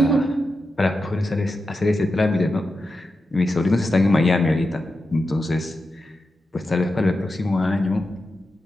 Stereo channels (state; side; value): normal; both; correlation 0.90